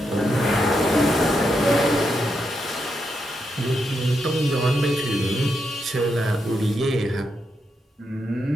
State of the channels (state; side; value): normal; both; correlation 0.83